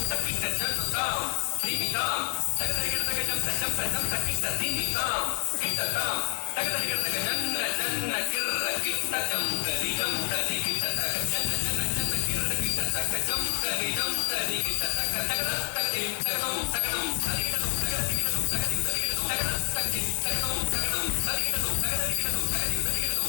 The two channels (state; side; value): silent; right; 59 dB below the other